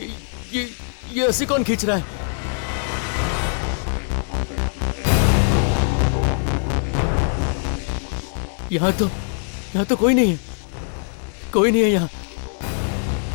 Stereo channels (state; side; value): silent; right; 60 dB below the other